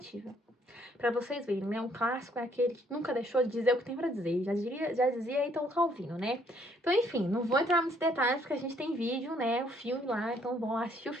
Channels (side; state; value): both; normal; correlation 0.66